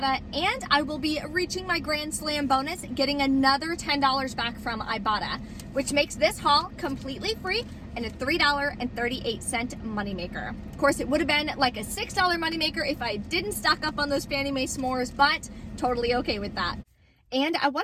and I will be reaching my Grand Slam bonus, getting another $10 back from Ibotta, which makes this haul completely free and a $3.38 moneymaker. Of course, it would have been like a $6 moneymaker if I didn't stock up on those Fannie Mae s'mores, but totally okay with that. And I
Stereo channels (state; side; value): identical; both; correlation 1.00